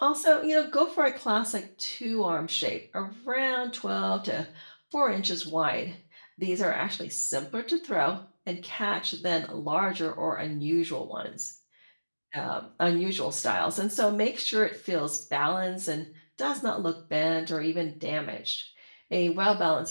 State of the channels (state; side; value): inverted; both; correlation -1.00